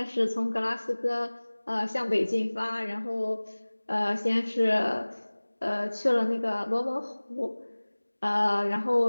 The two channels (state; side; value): inverted; both; correlation -1.00